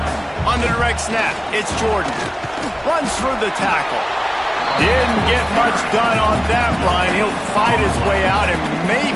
On the direct snap, it's Jordan. Runs through the tackle. Didn't get much done on that line. He'll fight his way out and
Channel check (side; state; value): both; identical; correlation 1.00